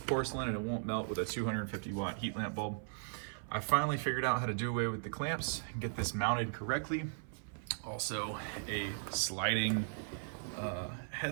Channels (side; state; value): left; silent; 53 dB below the other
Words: and it won't melt with a 250 watt heat lamp bulb. I finally figured out how to do away with the clamps and get this mounted correctly. Also a sliding